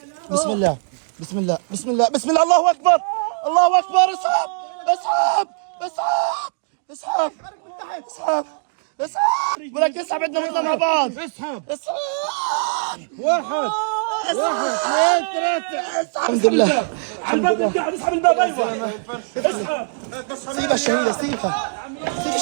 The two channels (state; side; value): silent; left; digital silence